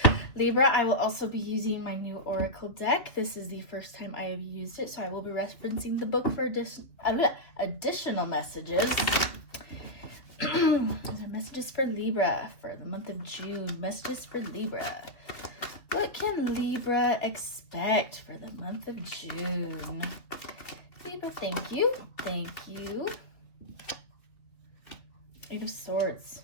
Libra, I will also be using my new Oracle deck. This is the first time I have used it, so I will be referencing the book for additional messages. Those are messages for Libra for the month of June. Messages for Libra. What can Libra expect for the month of June? Libra, thank you. Thank you. 8 of Swords.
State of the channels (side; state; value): right; late; 2.9 ms